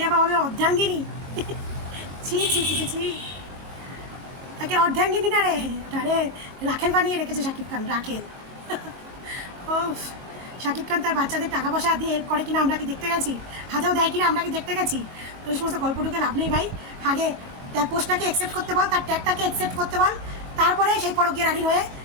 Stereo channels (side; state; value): left; late; 22 ms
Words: আবার হবে অর্ধাঙ্গিনী। ছি ছি ছি ছি, তাকে অর্ধাঙ্গিনী না রে, তারে রাখেল বানিয়ে রেখেছে শাকিব খান, রাখেল। ও, শাকিব খান তার বাচ্চাদের টাকা পয়সা দিয়ে হেল্প করে কিনা আমরা কি দেখতে গেছি? হাতেও দেয় কিনা আমরা কি দেখতে গেছি? তো এই সমস্ত গল্পটুকে লাভ নেই ভাই। আগে তার পোস্টটাকে অ্যাকসেপ্ট করতে বল, তার ট্যাগটাকে অ্যাকসেপ্ট করতে বল, তারপরে সেই পরকীয়া রানীর হয়ে